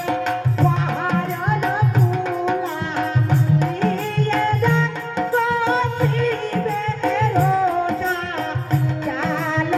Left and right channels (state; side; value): identical; both; correlation 1.00